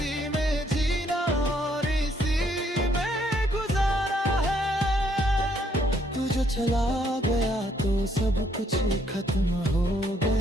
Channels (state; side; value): normal; both; correlation 0.70